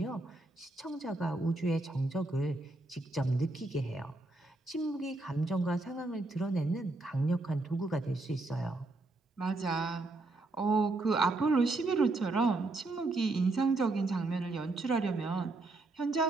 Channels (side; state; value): left; quieter; 3.0 dB